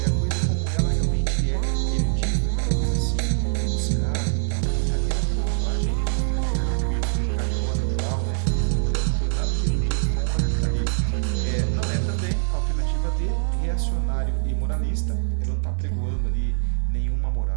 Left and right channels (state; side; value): silent; left; digital silence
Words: É a coisa como ela realmente é. Erudito, aquela coisa assim, rebuscada e tal. A Rita Lee, ela tem uma linguagem muito tranquila, brincalhona e tal, né? Então, não tem nada de erudito com a Rita Lee. Não é também a alternativa D, reacionário e moralista. Ela não está pregoando ali nenhuma